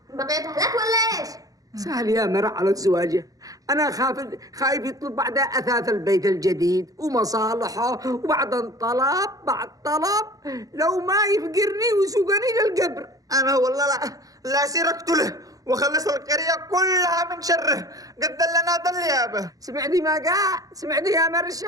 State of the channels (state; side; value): late; left; 0.17 ms